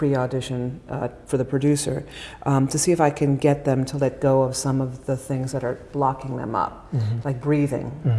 for the producer, to see if I can get them to let go of some of the things that are blocking them up, mm-hmm. like breathing.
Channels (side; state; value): both; identical; correlation 1.00